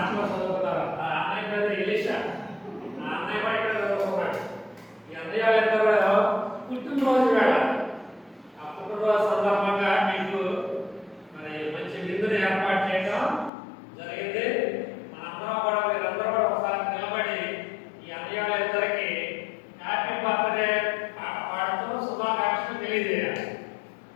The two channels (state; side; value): drops out; right; at 13.5 s